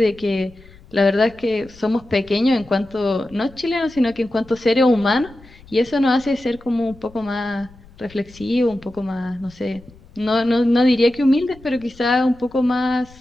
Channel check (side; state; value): left; noise; rumble, 23 dB below the sound